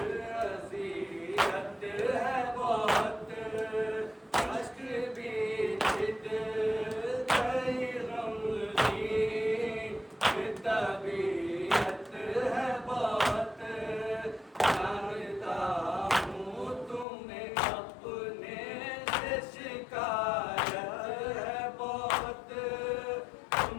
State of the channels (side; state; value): right; drops out; at 17.1 s